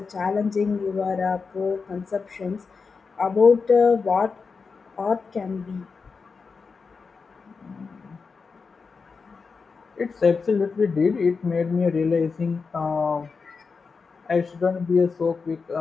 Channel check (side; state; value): right; quieter; 4.9 dB